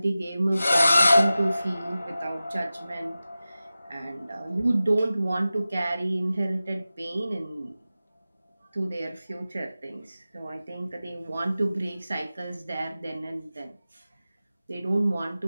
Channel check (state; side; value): inverted; both; correlation -0.95